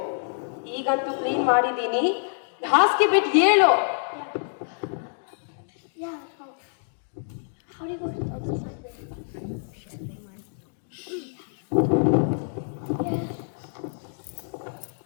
ಈಗಂತೂ ಕ್ಲೀನ್ ಮಾಡಿದೀನಿ, ಹಾಸಿಗೆ ಬಿಟ್ಟು ಹೇಳು.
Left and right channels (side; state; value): right; silent; digital silence